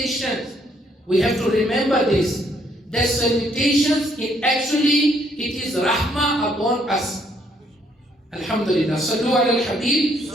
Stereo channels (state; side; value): normal; both; correlation 0.69